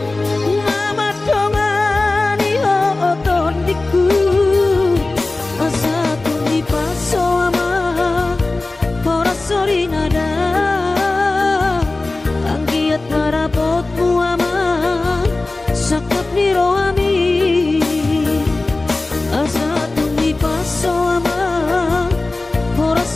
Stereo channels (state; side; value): quieter; right; 3.2 dB